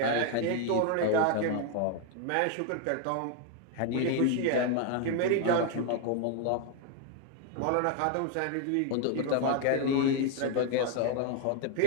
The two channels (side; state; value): both; different; correlation 0.01